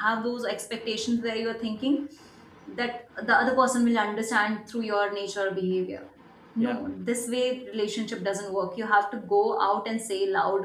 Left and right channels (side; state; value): both; identical; correlation 1.00